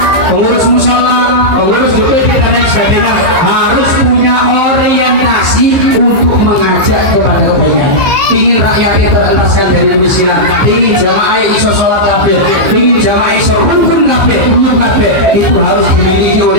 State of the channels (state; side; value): late; left; 15 ms